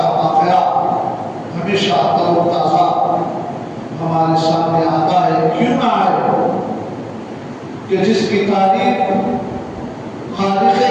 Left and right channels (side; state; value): both; identical; correlation 1.00